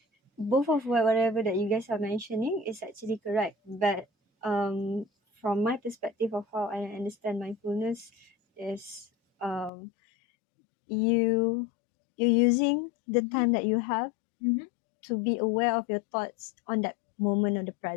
Both of whatever that you guys are mentioning is actually correct, but from my perspective of how I understand mindfulness is you using the time that you have to be aware of your thoughts on that moment of the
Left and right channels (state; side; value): drops out; right; at 9.7 s